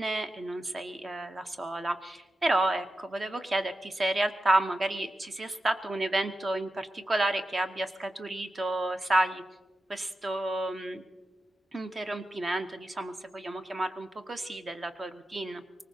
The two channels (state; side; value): normal; both; correlation 0.91